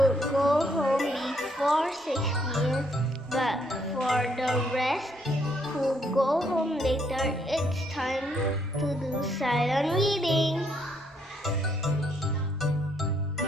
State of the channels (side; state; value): both; normal; correlation 0.71